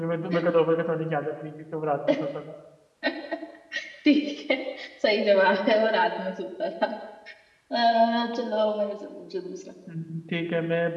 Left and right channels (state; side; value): identical; both; correlation 1.00